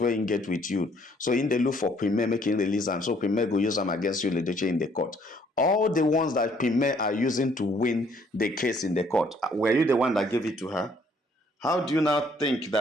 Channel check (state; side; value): normal; both; correlation 0.64